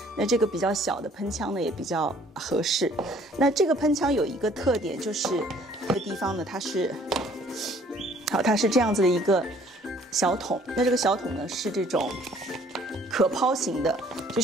那这个比较小的喷枪呢也比较合适。那这个喷枪有一个特点，就是这个地方呢，它是这样子的一个小桶。那这个小桶呢是这种可抛型的，就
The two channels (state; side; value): normal; both; correlation 0.58